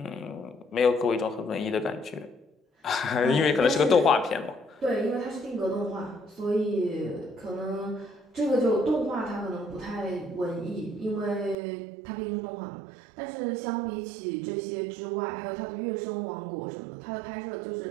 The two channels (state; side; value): drops out; left; at 11.6 s